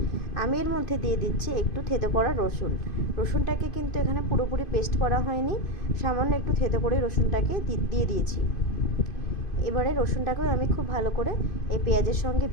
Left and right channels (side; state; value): right; late; 2.5 ms